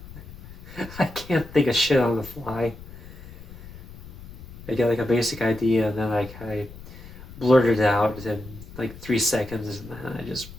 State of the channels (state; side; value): noise; left; rumble, 16 dB below the sound